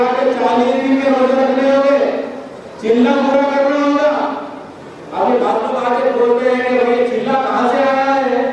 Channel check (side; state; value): both; identical; correlation 1.00